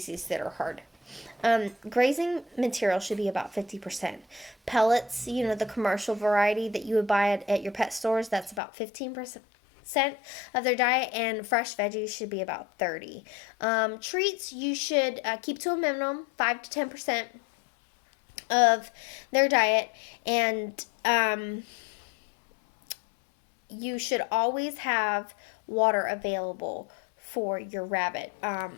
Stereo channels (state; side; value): drops out; right; at 8.6 s